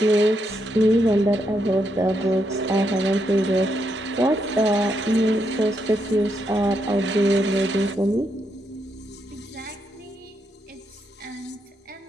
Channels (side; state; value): both; normal; correlation 0.80